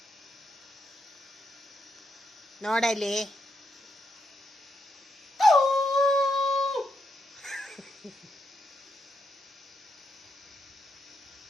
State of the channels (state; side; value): normal; both; correlation 0.80